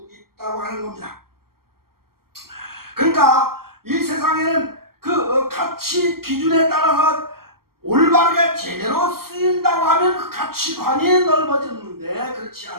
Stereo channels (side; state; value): left; late; 0.93 ms